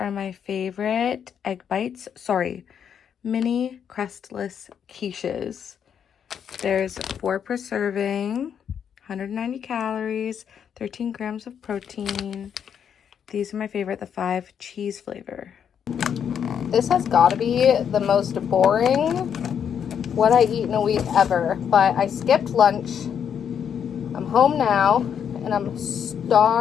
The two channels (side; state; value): right; quieter; 8.1 dB